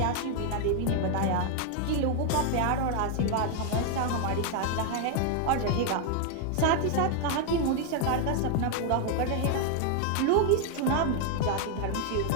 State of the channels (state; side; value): different; both; correlation 0.00